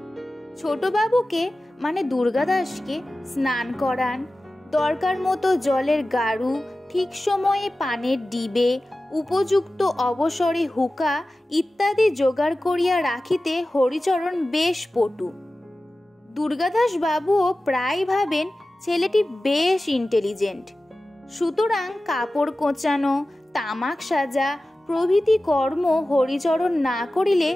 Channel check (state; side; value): normal; both; correlation 0.95